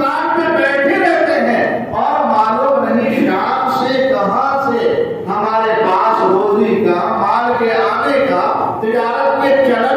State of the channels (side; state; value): both; identical; correlation 1.00